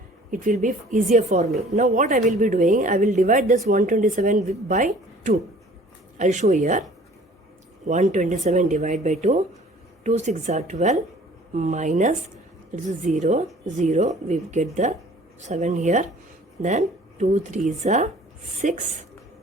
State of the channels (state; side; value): normal; both; correlation 0.51